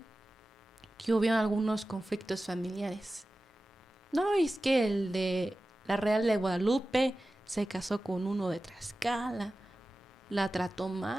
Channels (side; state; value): both; normal; correlation 0.95